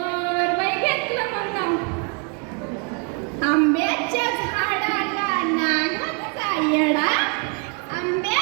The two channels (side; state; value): left; quieter; 35.4 dB